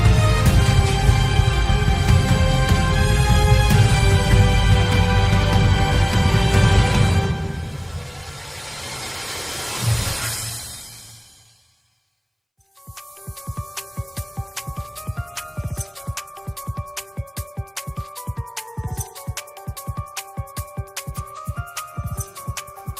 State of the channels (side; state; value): both; identical; correlation 1.00